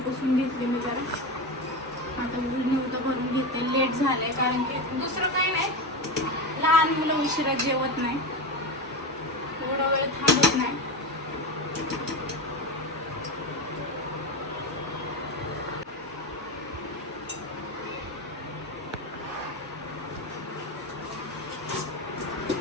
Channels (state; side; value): normal; both; correlation 0.19